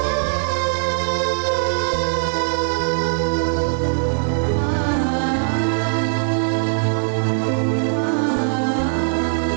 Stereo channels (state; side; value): silent; left; 62 dB below the other